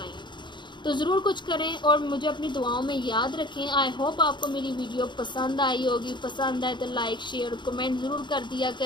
हूँ। तो ज़रूर कुछ करें और मुझे अपनी दुआओं में याद रखें। आई होप आपको मेरी वीडियो पसंद आई होगी। पसंद आए तो लाइक, शेयर, कमेंट ज़रूर कर दिया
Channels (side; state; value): right; late; 0.22 ms